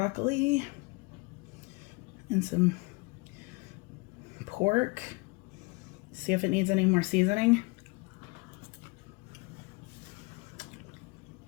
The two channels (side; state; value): right; quieter; 27.4 dB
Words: and some pork. See if it needs any more seasoning.